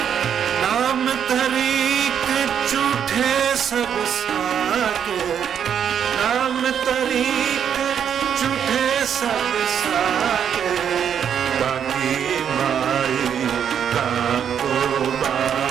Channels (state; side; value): quieter; left; 8.4 dB